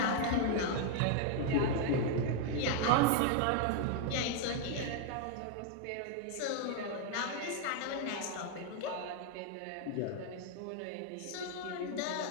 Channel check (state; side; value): different; both; correlation 0.00